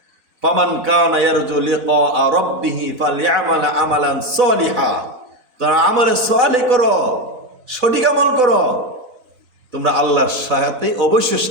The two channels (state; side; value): late; left; 4.1 ms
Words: ফামান কানা ইয়ারজু লিকা রাব্বিহি ফালইআমাল আমালান সলিহা। তোমরা আমলে সালেহ করো, সঠিক আমল করো, তোমরা আল্লাহর সাথে অবশ্যই